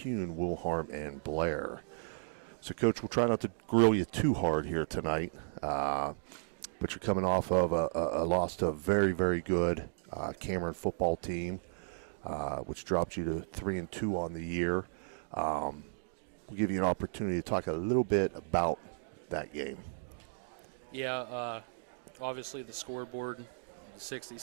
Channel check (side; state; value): left; silent; digital silence